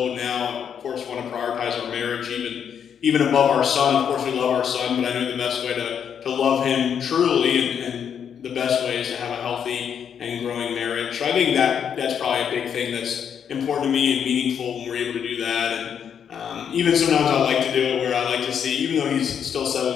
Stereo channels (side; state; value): right; quieter; 8.0 dB